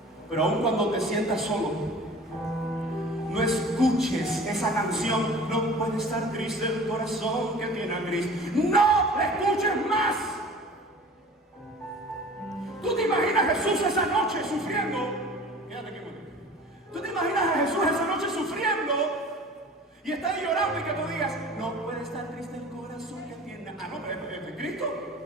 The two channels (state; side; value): normal; both; correlation 0.43